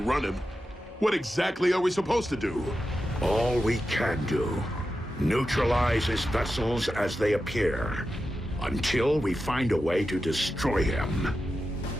him, what exactly are we supposed to do? All we can do. Neutralize his vessels as they appear, until we find a way to destroy him,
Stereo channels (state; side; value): normal; both; correlation 0.91